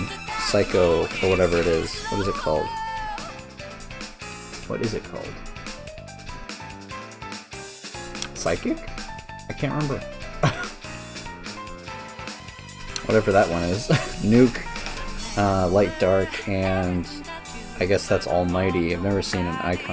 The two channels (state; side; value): identical; both; correlation 1.00